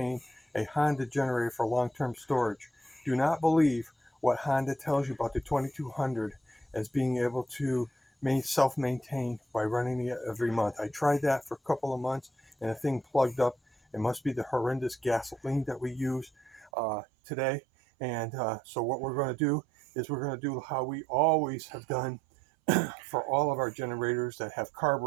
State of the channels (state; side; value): drops out; left; at 16.7 s